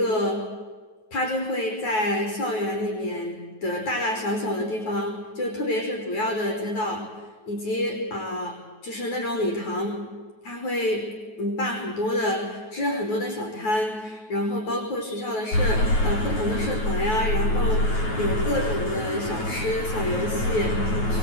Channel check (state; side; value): late; right; 9.3 ms